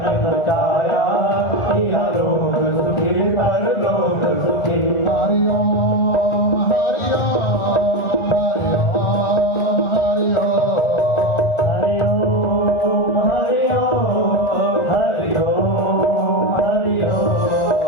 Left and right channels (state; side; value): late; right; 1.9 ms